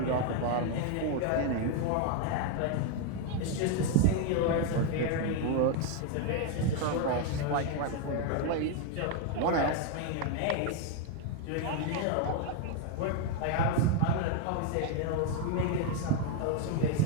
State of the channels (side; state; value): both; different; correlation 0.01